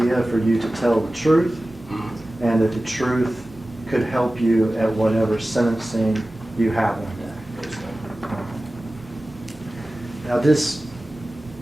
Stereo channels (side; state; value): both; normal; correlation 0.96